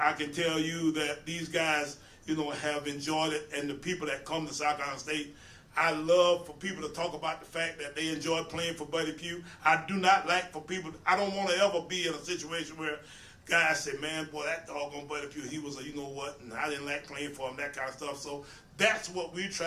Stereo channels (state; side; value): identical; both; correlation 1.00